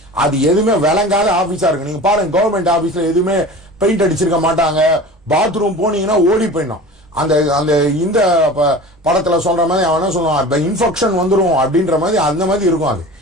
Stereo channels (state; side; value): normal; both; correlation 0.37